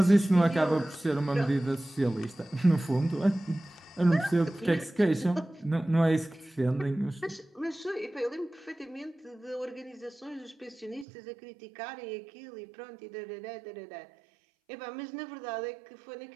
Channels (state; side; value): drops out; left; at 11.1 s